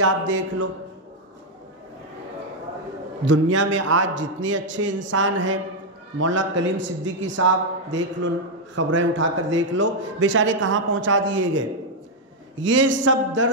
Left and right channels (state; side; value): normal; both; correlation 0.00